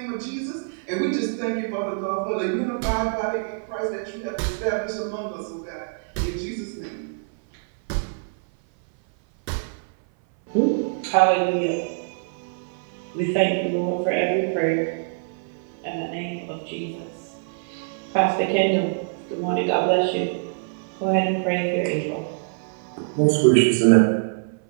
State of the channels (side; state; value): left; silent; 59 dB below the other